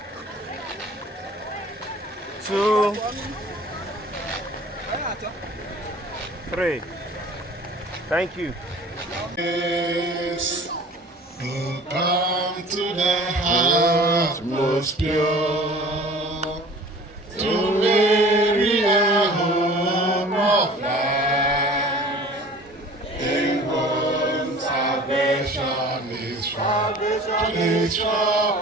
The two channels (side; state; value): both; normal; correlation 0.45